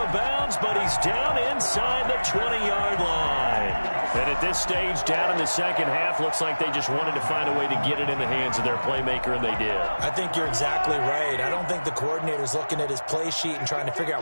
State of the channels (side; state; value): both; inverted; correlation -1.00